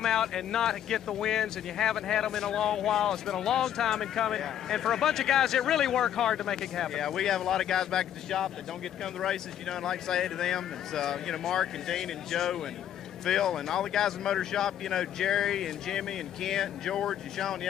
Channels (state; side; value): quieter; right; 10.4 dB